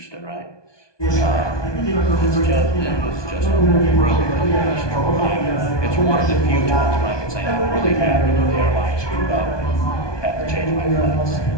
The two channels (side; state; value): right; late; 1.2 ms